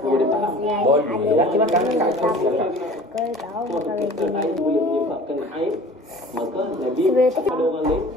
Boleh faham? Boleh. Laki makan kat kau. Kalau tahu makan Kalau air boleh menyebabkan air, maka Nabi pada orang lain,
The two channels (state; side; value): normal; both; correlation 0.44